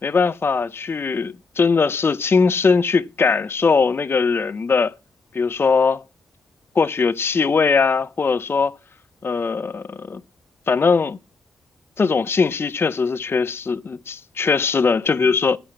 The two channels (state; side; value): quieter; right; 4.6 dB